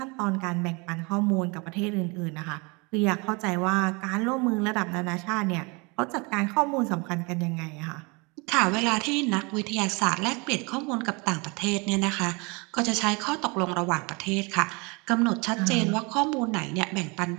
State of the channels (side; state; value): left; quieter; 28.8 dB